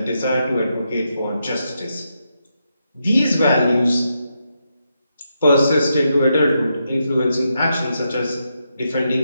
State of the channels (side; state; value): both; inverted; correlation -0.83